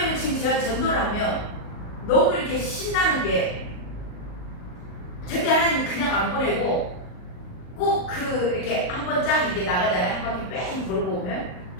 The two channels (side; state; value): right; late; 39 ms